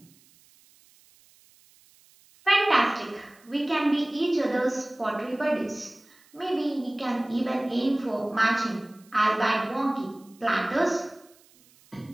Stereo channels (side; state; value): right; noise; hiss, 29 dB below the sound